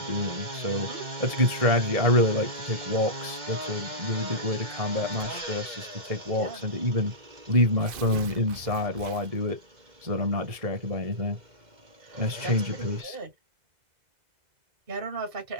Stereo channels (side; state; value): left; late; 2.0 ms